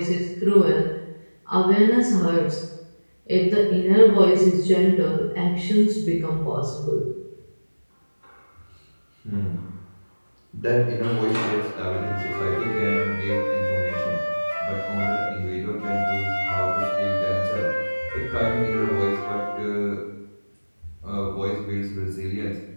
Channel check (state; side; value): inverted; both; correlation -1.00